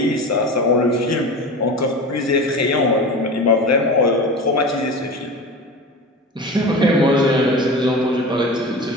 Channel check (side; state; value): both; normal; correlation 0.31